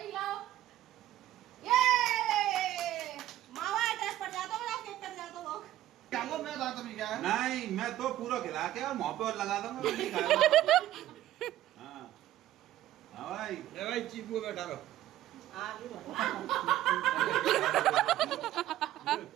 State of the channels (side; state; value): left; quieter; 13.6 dB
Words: ये मावा एड्रेस पर जाता हूँ, केक कर जाता हूँ। क्या वो मैं बात अभी क्या है? नहीं मैं तो पूरा खिला के और मुंह पे और लगा दूंगा, मैं नहीं खाऊंगा। हाँ हाँ भाई ले भाई चीपू बैठा रहो।